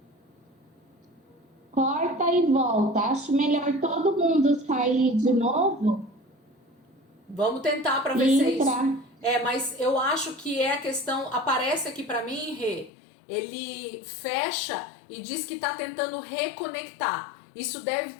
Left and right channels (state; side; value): drops out; right; at 12.9 s